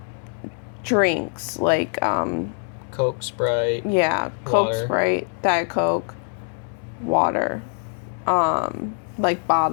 drinks like Coke, Sprite. yeah, Coke, Water. Sprite, Diet Coke, water, like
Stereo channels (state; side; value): silent; right; digital silence